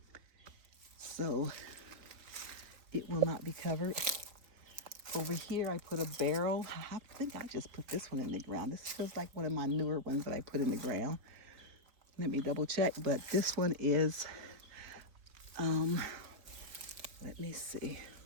So it will not be covered. Over here, I put a barrel. I think I just put this one in the ground. This feels like one of my newer ones that I put in the ground. Let me double check, but this one is, let me see,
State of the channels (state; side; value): late; left; 4.4 ms